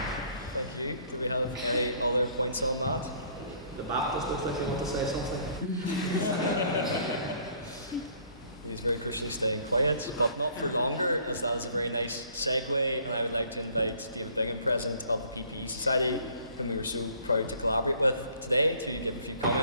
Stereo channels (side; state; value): both; inverted; correlation -0.58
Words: Thank you. Do we have any other points on that? The Baptist looks like they want to say something. He's very crucially staying quiet, but not for longer, as that is a very nice segue, and I would like to invite David Bingham, President of the PPE Society, whom we were so proud to collaborate with today, to give a few